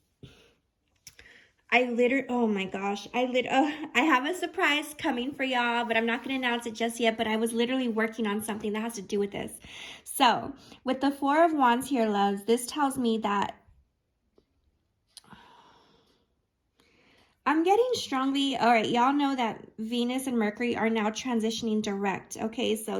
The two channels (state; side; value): identical; both; correlation 1.00